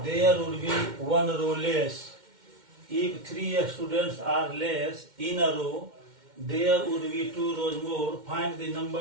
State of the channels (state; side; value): late; left; 2.1 ms